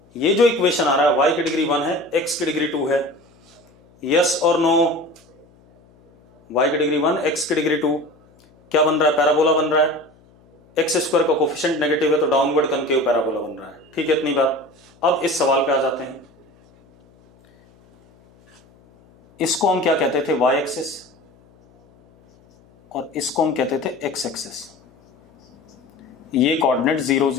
ये जो इक्वेशन आ रहा है y की डिग्री 1 है, x की डिग्री 2 है, यस और नो? y की डिग्री 1, x की डिग्री 2, क्या बन रहा है? पैराबोला बन रहा है। एक्स स्क्वायर का कोफिशिएंट नेगेटिव है तो डाउनवर्ड कनकेव पैराबोला बन रहा है। ठीक है, इतनी बात। अब इस सवाल पे आ जाते हैं। इसको हम क्या कहते थे? y एक्सिस, और इसको हम कहते थे x एक्सिस। ये कोऑर्डिनेट 0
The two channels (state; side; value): noise; left; hum, 30 dB below the sound